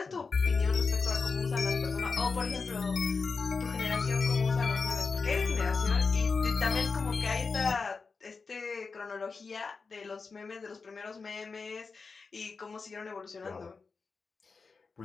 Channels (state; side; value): quieter; right; 4.7 dB